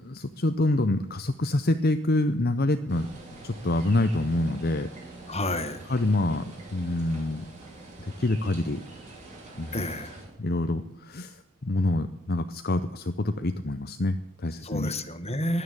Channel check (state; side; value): normal; both; correlation 0.71